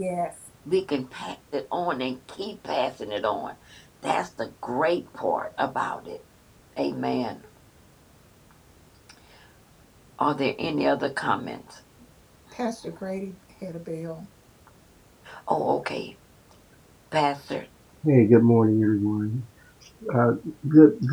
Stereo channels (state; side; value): identical; both; correlation 1.00